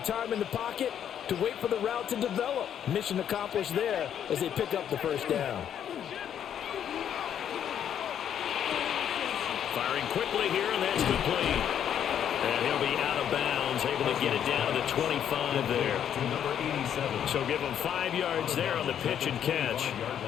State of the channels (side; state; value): right; quieter; 9.4 dB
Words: in the pocket to wait for the route to develop. Mission accomplished there as they pick up the first down. Firing quickly here, and that's complete. And he'll be out of bounds, able to get it down to the 25 there. To number 87. So give him 5 yards there on the pitch and catch,